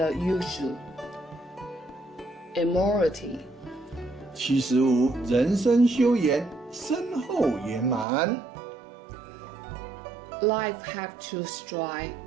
usual. Immortality. 75人生修研，身后圆满。Life have to strive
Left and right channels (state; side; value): drops out; left; at 8.1 s